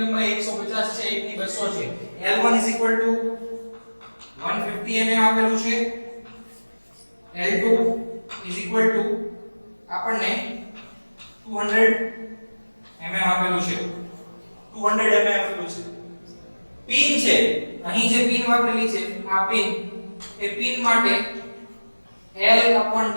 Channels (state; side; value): inverted; both; correlation -1.00